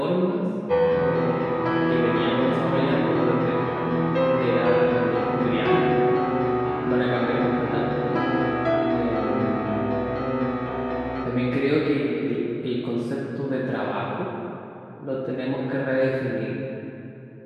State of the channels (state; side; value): identical; both; correlation 1.00